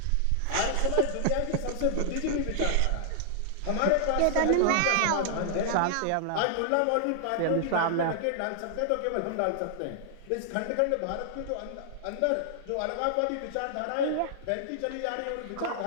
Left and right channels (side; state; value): both; different; correlation -0.01